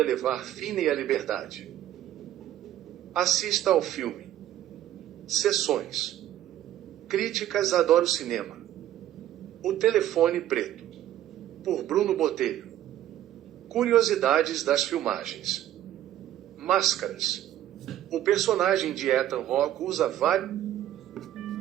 levar Finney à liberdade. Assista ao filme. Sessões. Críticas: Adoro Cinema. O Telefone Preto, por Bruno Botelho. Curiosidades das filmagens. Máscaras. O personagem de Ethan Hawke usa várias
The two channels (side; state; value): left; quieter; 12.4 dB